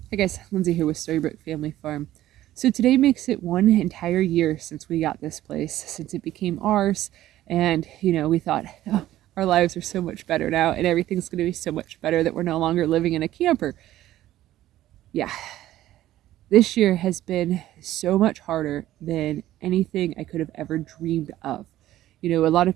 Hey guys, Lindsay here with Storybook Family Farm. So today makes it 1 entire year since we got this place, since it became ours. And, we thought, oh, our lives are so much better now and everything's going to be so much better that we're no longer living in a camper. Yeah, this year has been so much harder than anything I could have ever dreamed of. A lot of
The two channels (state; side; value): quieter; left; 14.1 dB